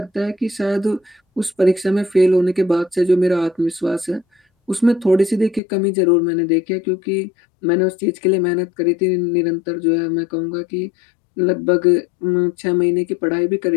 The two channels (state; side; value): drops out; right; at 5.6 s